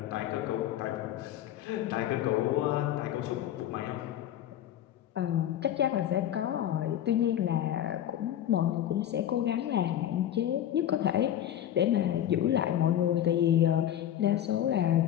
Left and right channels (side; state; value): right; quieter; 11.3 dB